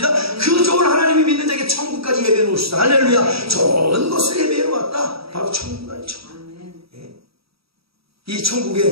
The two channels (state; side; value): late; left; 0.76 ms